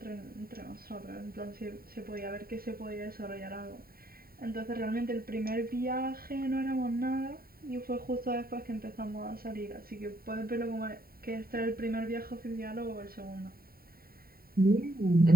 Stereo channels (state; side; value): late; left; 0.43 ms